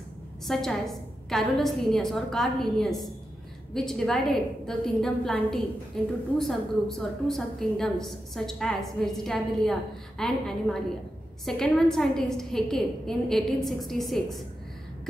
such as Carolus Linnaeus or Carl Linnaeus, which divided the kingdom Plantae into 2 subgroups or 2 subkingdoms such as Vegetabilia and Animalia. Second one, scientist Haeckel in 1866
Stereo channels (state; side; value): normal; both; correlation 0.89